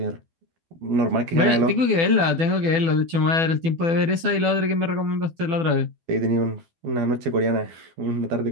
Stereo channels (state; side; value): late; left; 12 ms